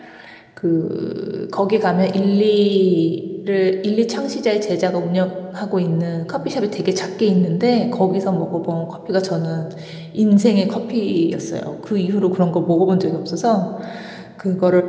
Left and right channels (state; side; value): identical; both; correlation 1.00